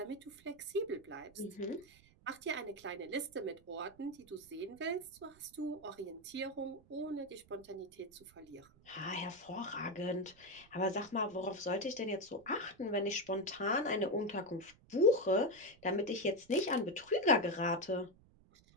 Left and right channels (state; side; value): noise; right; rumble, 27 dB below the sound